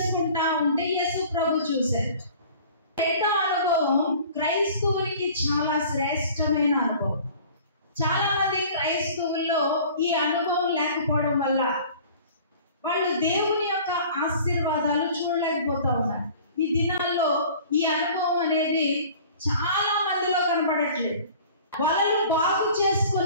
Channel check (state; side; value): inverted; both; correlation -0.46